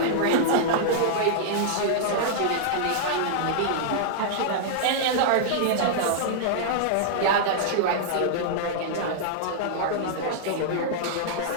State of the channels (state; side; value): different; both; correlation -0.01